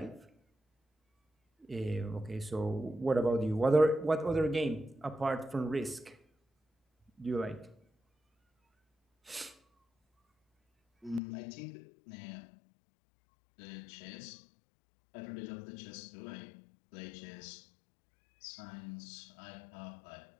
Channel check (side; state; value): right; drops out; at 11.2 s